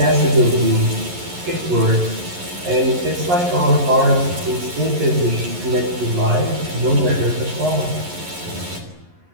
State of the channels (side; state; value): left; late; 11 ms